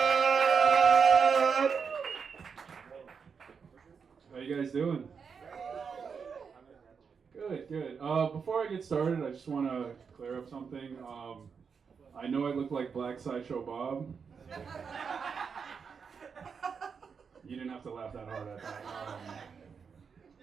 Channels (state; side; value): quieter; left; 6.0 dB